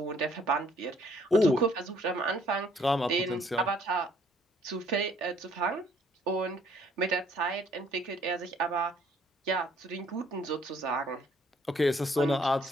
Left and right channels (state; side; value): normal; both; correlation 0.62